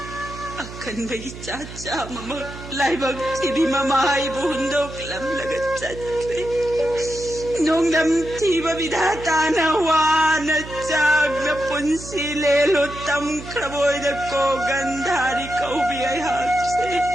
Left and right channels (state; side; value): noise; right; hum, 13 dB below the sound